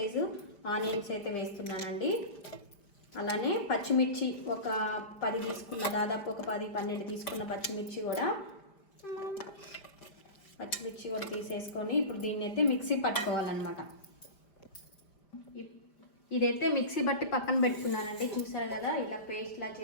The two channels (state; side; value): late; right; 5.3 ms